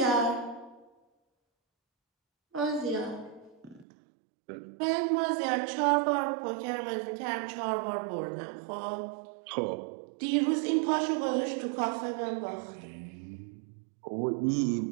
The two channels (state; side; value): drops out; left; at 3.9 s